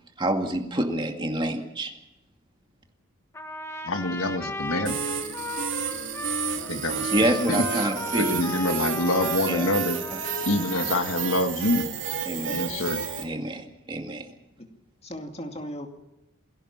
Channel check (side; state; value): both; normal; correlation 0.26